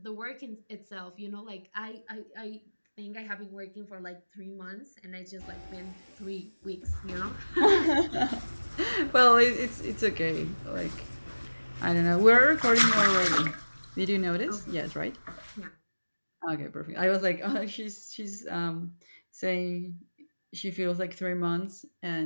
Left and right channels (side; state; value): both; inverted; correlation -1.00